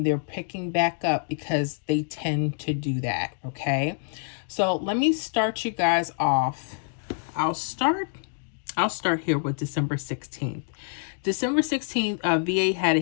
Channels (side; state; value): right; silent; digital silence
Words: they're picking back up because they tend to do that. Okay, so let me start you guys off. I'll start here with December 16th. December 16th, VA had a